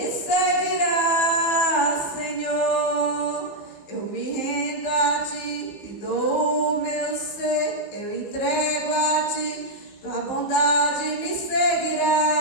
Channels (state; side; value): late; right; 15 ms